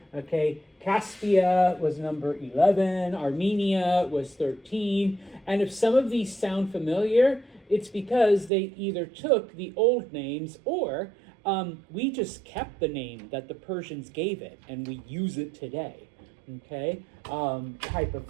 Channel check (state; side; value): drops out; left; at 8.5 s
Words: okay. Caspia was number 11. Armenia was 13. And if some of these sound familiar, it's because they either took the old names or we just kept the name that the Persians gave it and we use it today, okay, type of